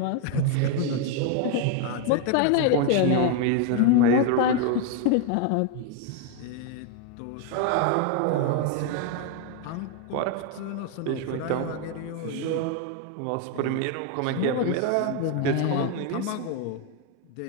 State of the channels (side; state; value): both; different; correlation 0.01